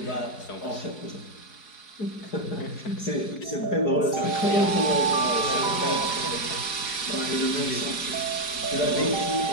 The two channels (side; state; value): right; late; 4.7 ms